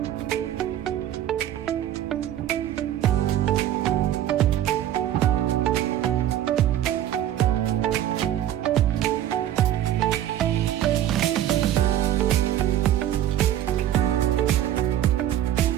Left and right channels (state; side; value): quieter; left; 11.8 dB